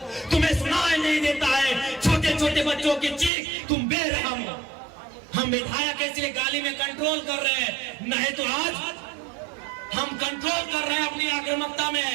तुम्हें सुनाई नहीं देता है छोटे छोटे बच्चों की चीख। तुम बेरहम हो। हम विधायक इसलिए गाली में कंट्रोल कर रहे हैं, नहीं तो आज हम कंट्रोल कर रहे हैं अपनी आक्रामकता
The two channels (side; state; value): left; drops out; at 3.3 s